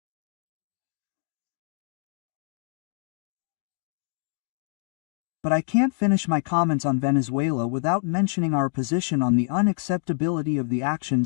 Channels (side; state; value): right; silent; 61 dB below the other